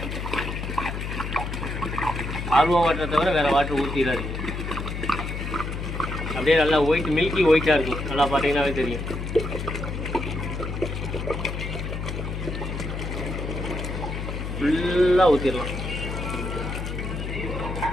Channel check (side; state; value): left; noise; hum, 5 dB below the sound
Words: ஆர்வோ வாட்டரை தவிர வேறு வாட்டர் ஊற்றிடாதீங்க. அப்படியே நல்லா ஒயிட் மில்கி ஒயிட்டாக இருக்கும், நல்லா பார்த்தீங்கன்னாவே தெரியும். ஃபுல்லாக ஊற்றிடலாம்.